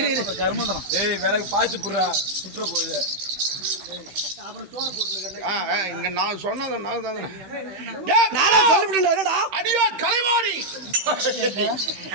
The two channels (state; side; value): late; left; 16 ms